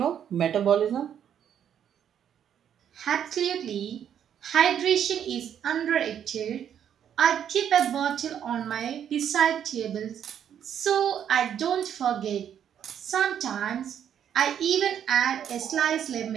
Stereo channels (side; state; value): left; quieter; 9.2 dB